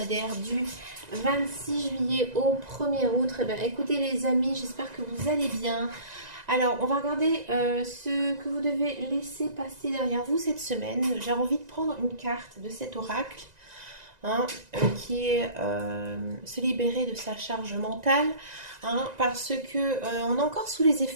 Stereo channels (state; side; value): late; left; 1.9 ms